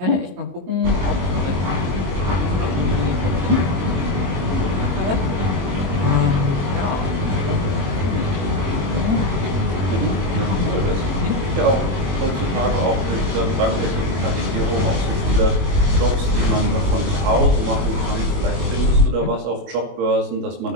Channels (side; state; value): left; late; 22 ms